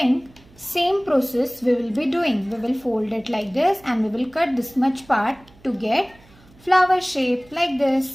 same process we will be doing. We will fold it like this and we will cut this much part to get flower shape like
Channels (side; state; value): right; noise; hum, 27 dB below the sound